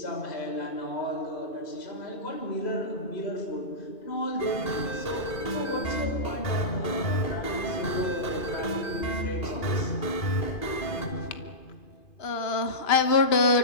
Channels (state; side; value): late; right; 2.5 ms